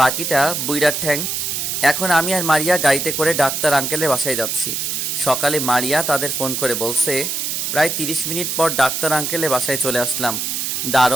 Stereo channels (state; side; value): noise; right; hiss, 2 dB below the sound